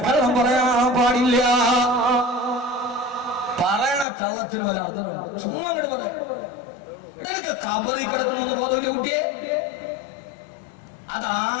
പറയാൻ പാടില്ല. പറയണ കള്ളത്തിന് വല്ല അർത്ഥമുണ്ട്? ചുമ്മാ അങ്ങോട്ട് പറയാം. ഇടയ്ക്ക് കബറിൽ കിടക്കണമെന്ന് ബോധമില്ല കുട്ടിയെ.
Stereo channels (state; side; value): drops out; right; at 4.0 s